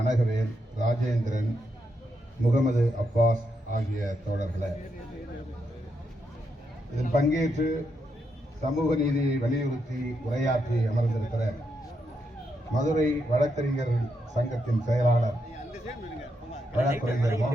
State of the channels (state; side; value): normal; both; correlation 0.81